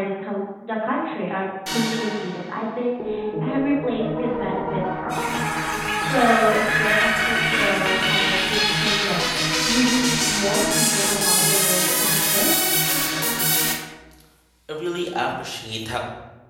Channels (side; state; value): both; identical; correlation 1.00